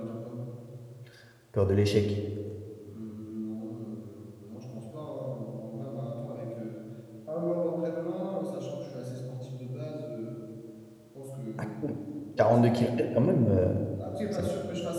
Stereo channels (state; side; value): identical; both; correlation 1.00